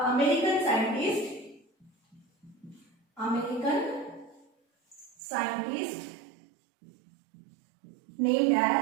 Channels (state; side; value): drops out; left; at 5.2 s